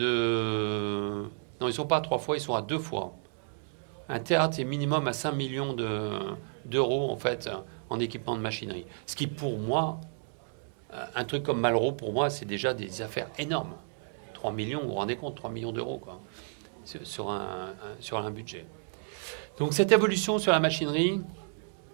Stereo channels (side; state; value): left; silent; digital silence